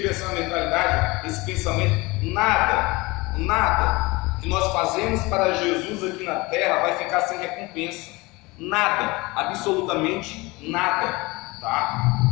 essa mentalidade, esse pensamento: nada que nós fazemos para Jesus aqui na terra vai ficar sem recompensa. Nada, absolutamente nada, tá?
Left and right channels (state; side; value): quieter; right; 23.3 dB